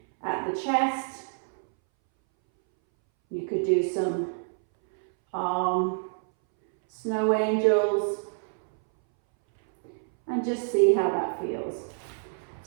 at the chest. You could do some arm snow angels and just see how that feels.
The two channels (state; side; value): silent; left; 60 dB below the other